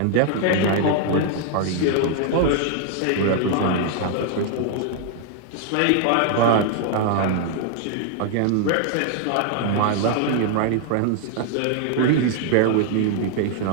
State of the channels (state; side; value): different; both; correlation 0.00